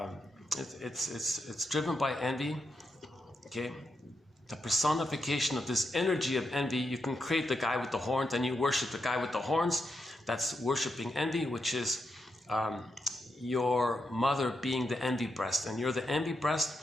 it's driven by envy, okay? The personification of this energy of envy, you can create the guy with the horns and you worship the guy with the horns. That's worshiping envy, which is your mother being the envy breast. And you're the envy breast,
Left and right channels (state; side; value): normal; both; correlation 0.84